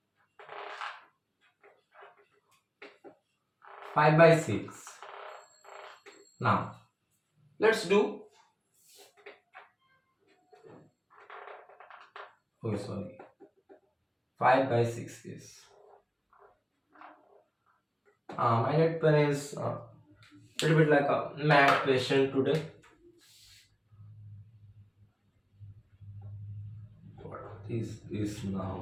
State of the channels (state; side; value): identical; both; correlation 1.00